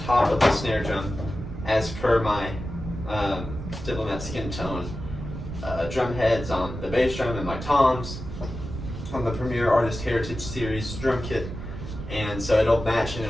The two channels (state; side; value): noise; right; rumble, 8 dB below the sound